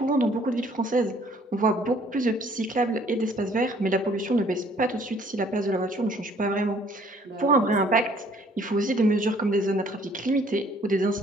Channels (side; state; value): both; normal; correlation 0.59